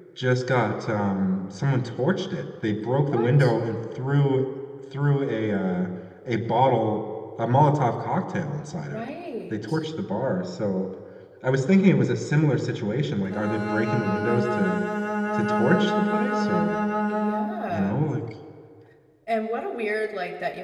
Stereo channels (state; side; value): identical; both; correlation 1.00